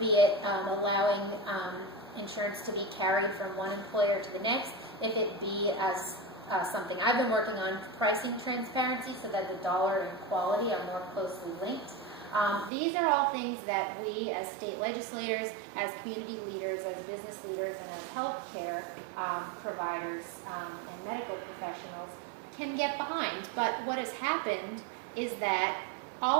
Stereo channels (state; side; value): drops out; left; at 12.7 s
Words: it allowing insurance to be carried from one employer to the next, if it be as something I've been working on, pricing transparency so that the dollar and quality are more closely linked. These are all things that we as state legislators, as community leaders, as business leaders, and as healthcare providers and medical professionals can get behind. But what has happened is that